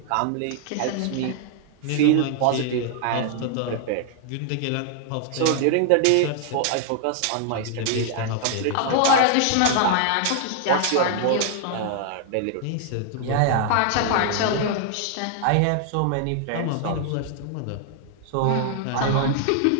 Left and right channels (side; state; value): both; different; correlation 0.00